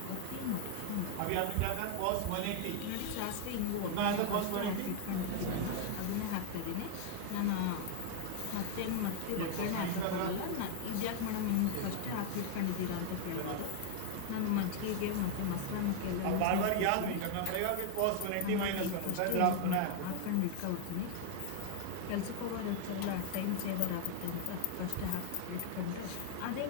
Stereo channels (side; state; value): both; different; correlation 0.00